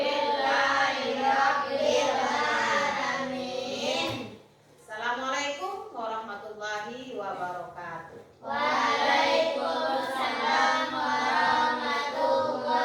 Assalamualaikum warahmatullahi wabarakatuh.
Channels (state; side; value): identical; both; correlation 1.00